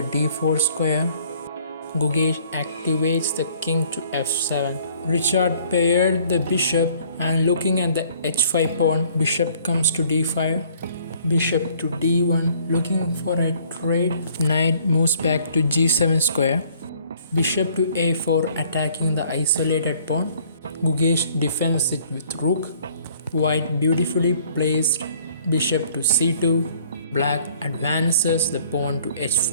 d4 square. Gukesh activates the king to f7. Richard paired the bishop, and looking at the h5 pawn, bishop comes to d5. Bishop to d1, looking for a trade. Knight moves back to g7 square. Bishop to a4, attacking the isolated pawn. Gukesh defends it with rook. White beautifully placed bishop to c2. Black advances the pawn to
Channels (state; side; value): inverted; both; correlation -0.59